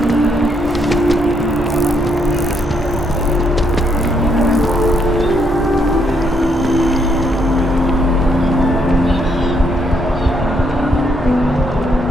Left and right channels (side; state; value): both; normal; correlation 0.73